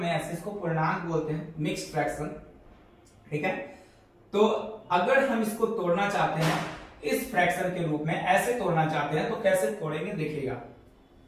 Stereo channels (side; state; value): both; identical; correlation 1.00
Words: ऐसे इसको पूर्णांक बोलते हैं, मिक्स्ड फ्रैक्शन, ठीक है। तो अगर हम इसको तोड़ना चाहते हैं इस फ्रैक्शन के रूप में, ऐसे तोड़ना चाहते हैं तो कैसे तोड़ेंगे देखिएगा।